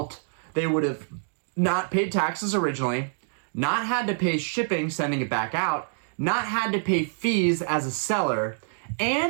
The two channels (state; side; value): silent; left; digital silence